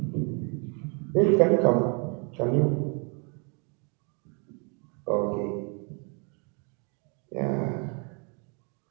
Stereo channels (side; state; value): left; quieter; 36.4 dB